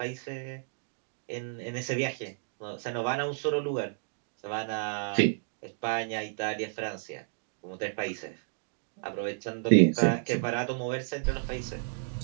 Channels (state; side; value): silent; left; digital silence